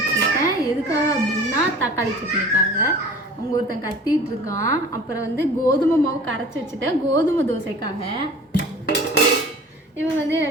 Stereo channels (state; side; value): normal; both; correlation 0.43